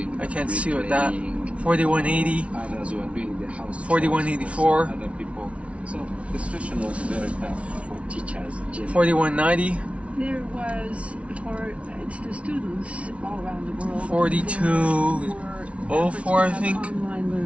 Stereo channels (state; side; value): late; left; 0.062 ms